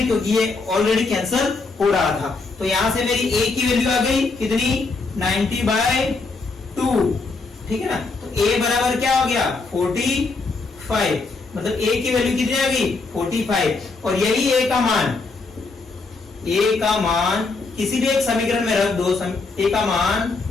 ये ऑलरेडी कैंसिल हो रहा था। तो यहां से मेरी a की वैल्यू आ गई कितनी 90/2, ठीक है ना। तो a बराबर क्या हो गया 45, मतलब a की वैल्यू कितनी आ गई 45 और यही a का मान किसी भी एक समीकरण में रख दो, a का मान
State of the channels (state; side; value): quieter; right; 3.9 dB